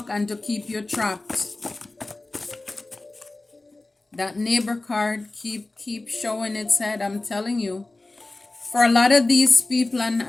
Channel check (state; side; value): quieter; right; 3.0 dB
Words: and to keep you trapped. That neighbor card keep showing its head, I'm telling you. For a lot of these people,